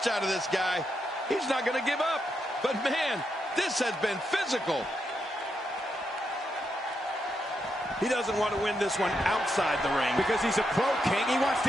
out of this guy. He's not going to give up. But man, this has been physical. He doesn't want to win this one outside the ring. Because he's a pro, King. He wants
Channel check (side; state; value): both; normal; correlation 0.82